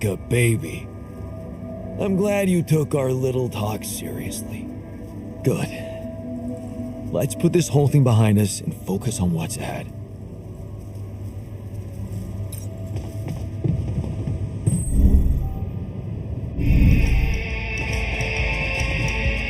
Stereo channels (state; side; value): identical; both; correlation 1.00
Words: a baby. I'm glad you took our little talk seriously. Good. Let's put this whole thing behind us and focus on what's ahead.